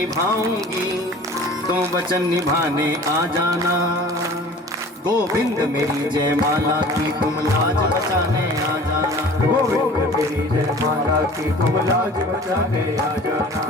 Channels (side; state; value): both; normal; correlation 0.44